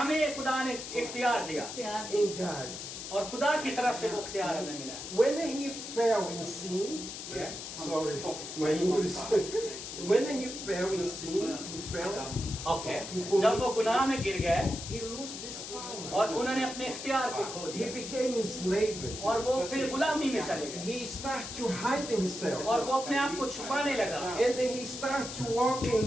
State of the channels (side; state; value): left; noise; hiss, 8 dB below the sound